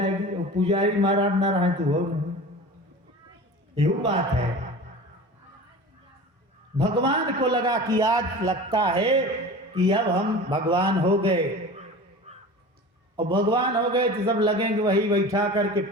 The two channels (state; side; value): normal; both; correlation 0.36